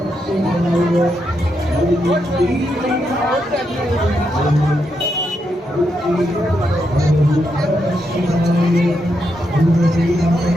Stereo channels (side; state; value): both; normal; correlation 0.82